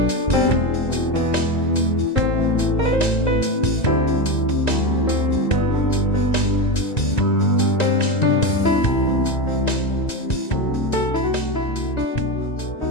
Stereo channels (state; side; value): late; right; 1.9 ms